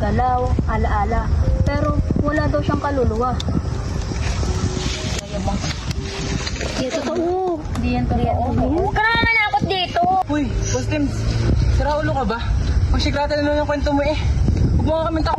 alaala. Pero wala daw siyang kaluluwa. Di totoo. Di yan totoo. Huwag ka naman manakot dito. Uy, Postim, sira ulo ka ba? Magsikrata na naman yung kwento mo eh. Huwag mo nga kami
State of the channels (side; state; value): both; identical; correlation 1.00